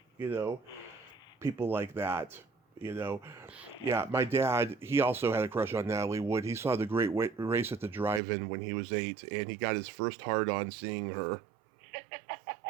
know, people like that. You know, yeah, my dad, he also had a crush on Natalie Wood. He saw the Great Race at the drive-in when he was 8, and he got his first hard-on seeing her.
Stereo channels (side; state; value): left; drops out; at 8.2 s